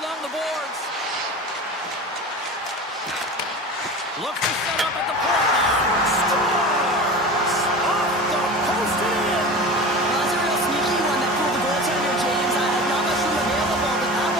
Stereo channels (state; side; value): normal; both; correlation 0.32